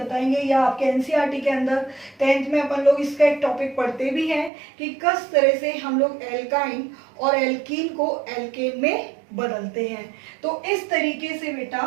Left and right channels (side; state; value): left; drops out; at 4.5 s